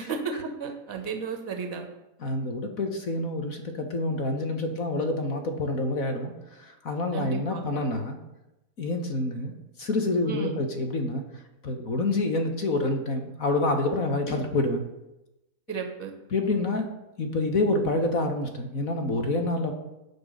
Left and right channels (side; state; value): right; late; 4.1 ms